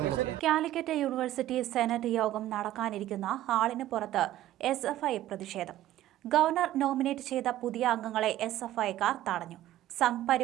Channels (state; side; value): quieter; left; 13.9 dB